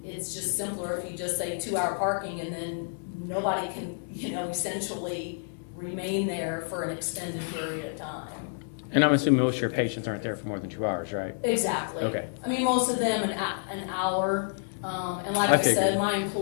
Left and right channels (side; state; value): right; silent; digital silence